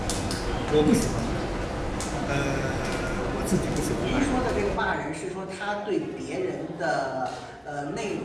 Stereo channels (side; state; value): both; identical; correlation 1.00